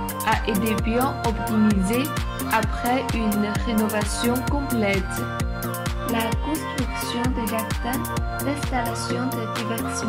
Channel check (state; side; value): identical; both; correlation 1.00